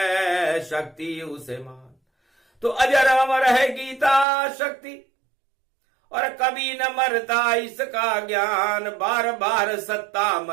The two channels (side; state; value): left; drops out; at 4.2 s